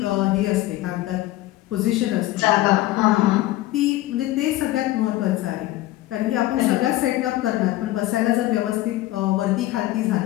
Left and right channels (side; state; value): right; quieter; 16.4 dB